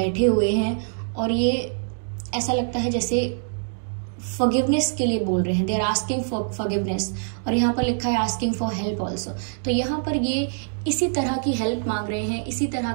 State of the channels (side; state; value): left; silent; digital silence